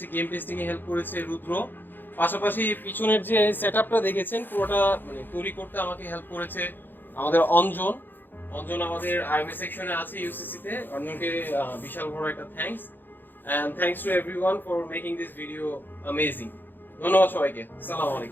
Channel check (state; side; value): late; right; 0.093 ms